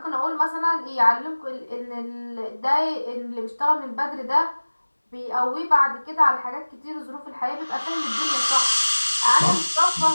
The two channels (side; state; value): both; inverted; correlation -1.00